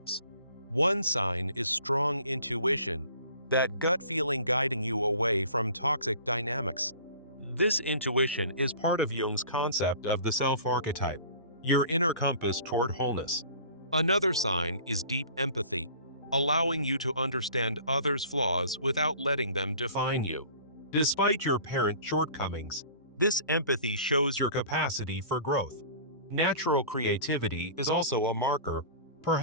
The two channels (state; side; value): inverted; both; correlation -0.46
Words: One sign is strong intuition, that gut feeling guiding you away from toxic dynamics. This intuition is part of Jung's concept of the self-archetype, your inner compass toward wholeness. Another sign is deep empathy, allowing you to understand others' flaws without letting them define you. Despite your parent shortcomings, this empathy shows your capacity for growth. Natural creativity is also a marker.